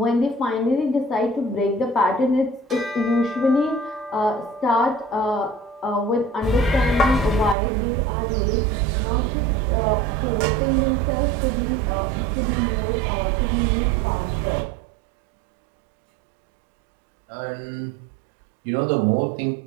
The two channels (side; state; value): left; drops out; at 7.6 s